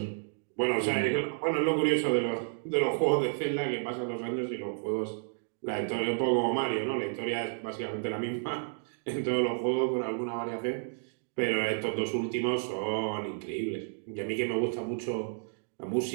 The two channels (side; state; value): left; silent; digital silence